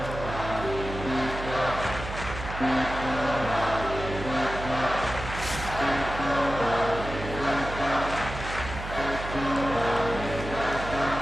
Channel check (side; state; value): right; noise; hum, 8 dB below the sound